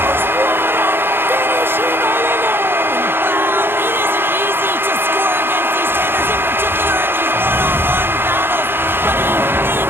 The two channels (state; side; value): late; left; 0.10 ms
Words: Finishing all alone. Wow, it isn't easy to score against these